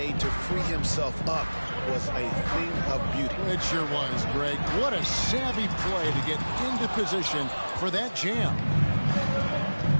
to free himself up was a thing of beauty. It sure was, Greg. What a savvy play to get into position for that jam.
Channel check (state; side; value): inverted; both; correlation -1.00